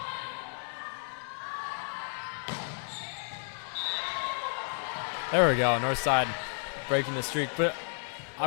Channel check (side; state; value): right; silent; 57 dB below the other